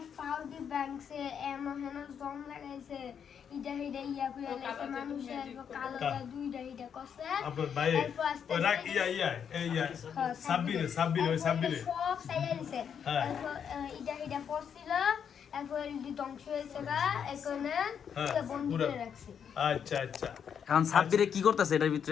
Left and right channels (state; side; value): quieter; right; 7.7 dB